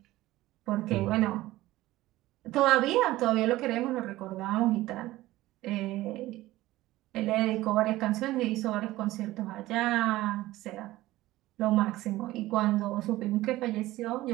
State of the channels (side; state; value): left; quieter; 16.9 dB